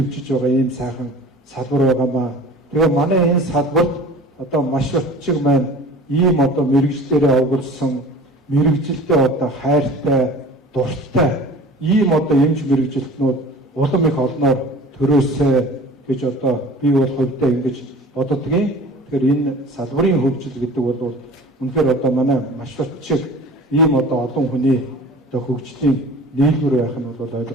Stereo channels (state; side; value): normal; both; correlation 0.42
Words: байгаа ийм сайхан салбар байгаамаа. Тэгээ манай энэ салбарт одоо маш утчиг маань ийм одоо мэрэгжлэрээ овгорсон мэрэгжилтэй одоо хайртай дуртай ийм одоо эмч мэрэгжилтнүүд улам их олноор төрөөсэй гэж одоо би бол хувьдаа ингэж боддгийн. Тэгэхээр энэ салбарын хөгжил гэдэг бол үнэхээр одоо манай маш утчиг ийм одоо олон хүний одоо хөгжлийн нийлбэр байх нь бол